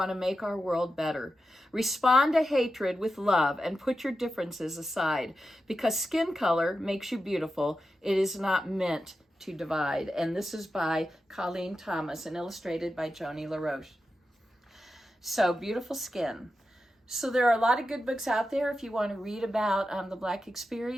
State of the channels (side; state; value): both; normal; correlation 0.90